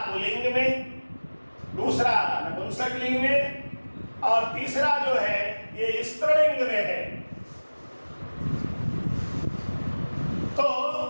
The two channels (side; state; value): both; inverted; correlation -1.00